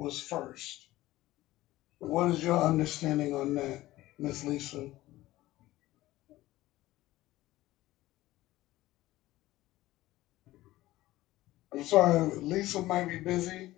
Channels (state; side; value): quieter; right; 16.8 dB